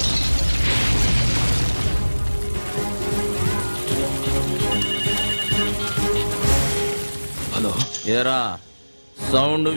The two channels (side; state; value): both; inverted; correlation -1.00